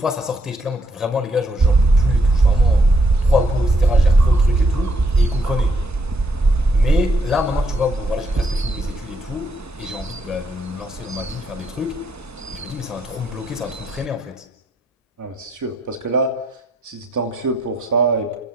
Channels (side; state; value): both; normal; correlation 0.72